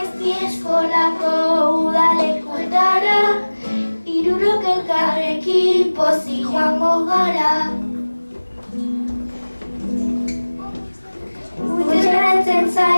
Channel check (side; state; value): both; inverted; correlation -1.00